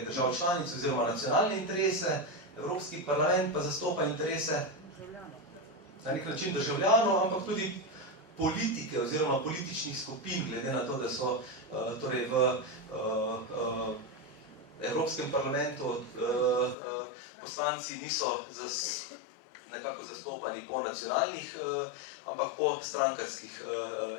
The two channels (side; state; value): right; drops out; at 16.8 s